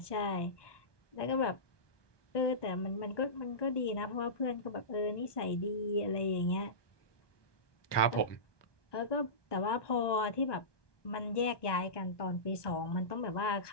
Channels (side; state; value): right; late; 1.2 ms